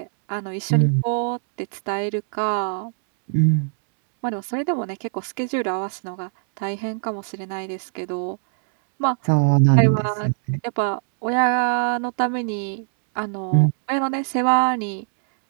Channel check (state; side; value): silent; left; 64 dB below the other